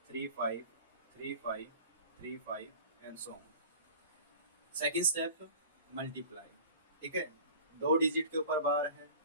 and so on. Second step multiply. ठीक है, 2 डिजिट के ऊपर बार है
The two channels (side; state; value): both; inverted; correlation -0.41